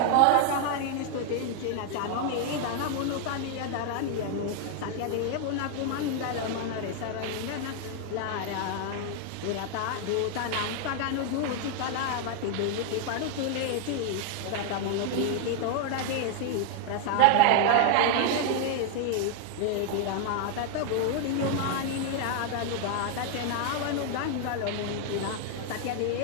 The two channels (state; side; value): different; both; correlation 0.00